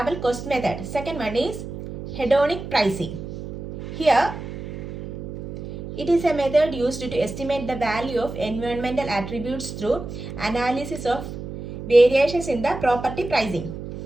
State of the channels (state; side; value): noise; right; hum, 9 dB below the sound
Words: cost method. Second one is hedonic pricing. Here, it is a method used to estimate the value of environmental attributes through analysis of variations in the property pricing.